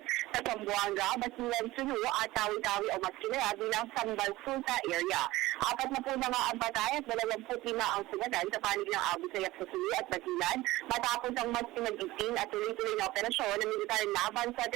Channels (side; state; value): left; quieter; 18.0 dB